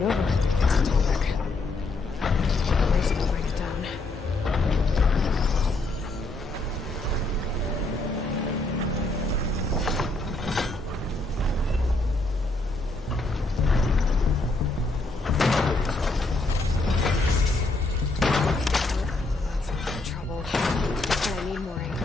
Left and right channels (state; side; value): quieter; right; 3.1 dB